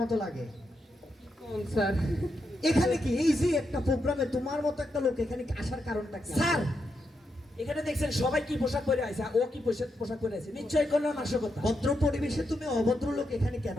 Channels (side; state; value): both; normal; correlation 0.83